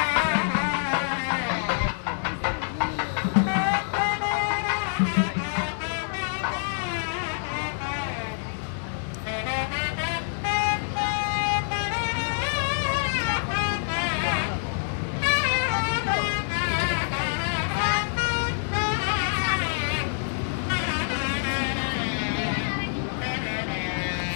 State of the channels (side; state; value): right; silent; digital silence